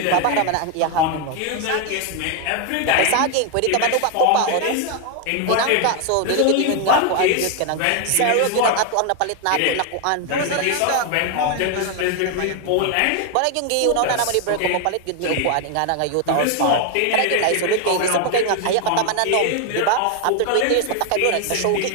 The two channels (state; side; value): different; both; correlation 0.01